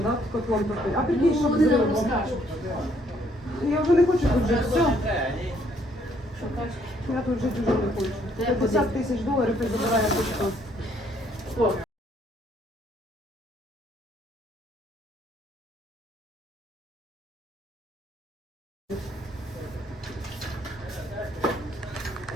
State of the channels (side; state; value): both; normal; correlation 0.67